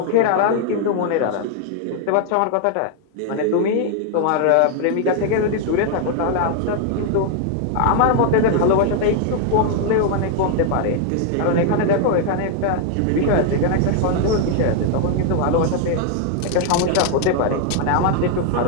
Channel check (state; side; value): different; both; correlation 0.00